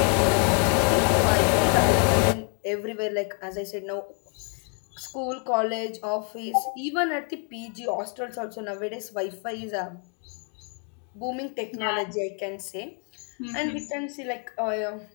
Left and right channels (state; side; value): quieter; right; 39.4 dB